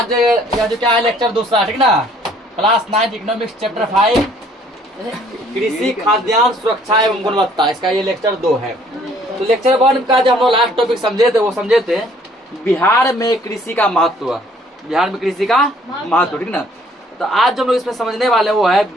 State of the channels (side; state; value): both; normal; correlation 0.60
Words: यह जो क्या है लेक्चर दूसरा, ठीक ना, क्लास 9 इकोनॉमिक्स चैप्टर 5 कृषि खाद्यान्न सुरक्षा एवं गुणवत्ता, इसका ये लेक्चर 2 है। तो लेक्चर 1 का जो हम लोग लास्ट टॉपिक समझे थे वो समझे थे बिहार में कृषि का महत्व, बिहार में कृषि का महत्व, ठीक ना। तो आज जो हम लोग इसमें समझने वाले वो है